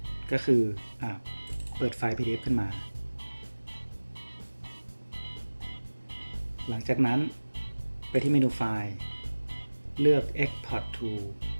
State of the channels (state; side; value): inverted; both; correlation -1.00